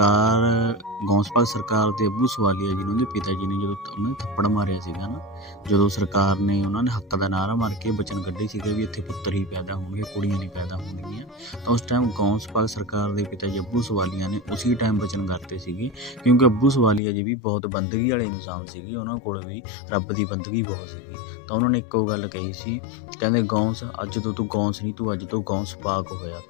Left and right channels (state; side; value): drops out; right; at 17.0 s